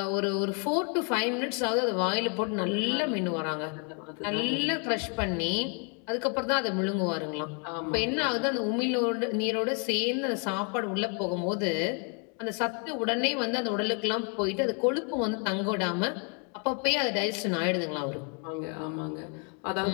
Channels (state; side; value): quieter; right; 38.7 dB